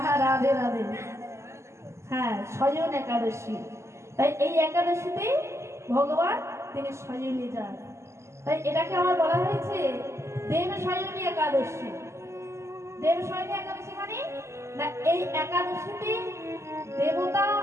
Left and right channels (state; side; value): late; left; 0.13 ms